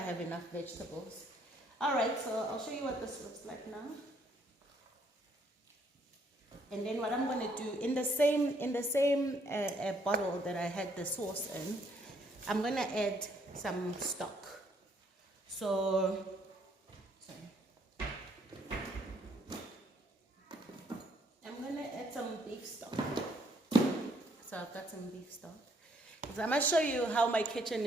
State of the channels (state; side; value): normal; both; correlation 0.68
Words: enough vegetables. All right, so I'll show you what this looks like now. And then what I'm going to do, in the same bottle that I had the sauce in, I'm going to add some stock. So, sorry. I'm going to add some beef stock. So I've got some beef stock. So I'm going to show you how my kitchen